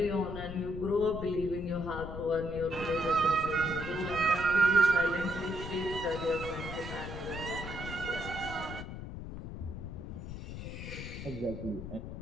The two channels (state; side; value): noise; left; rumble, 8 dB below the sound